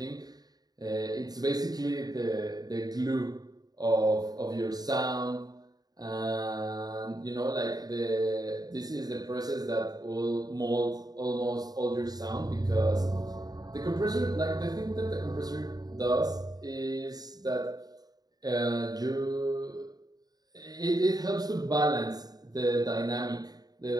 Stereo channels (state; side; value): late; left; 0.19 ms